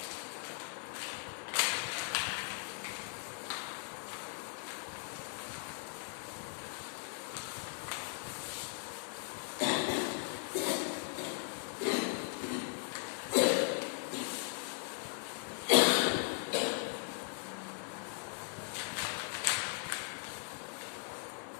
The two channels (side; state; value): right; silent; 52 dB below the other